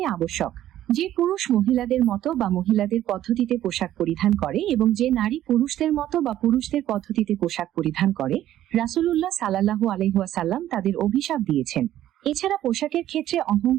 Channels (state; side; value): quieter; left; 12.7 dB